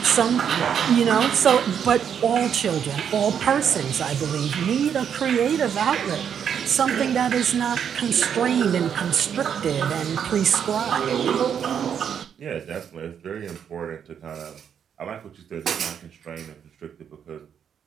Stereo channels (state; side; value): quieter; left; 8.1 dB